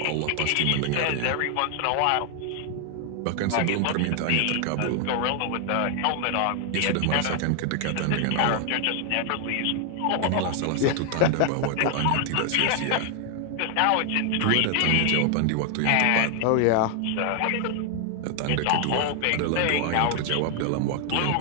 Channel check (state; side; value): different; both; correlation 0.00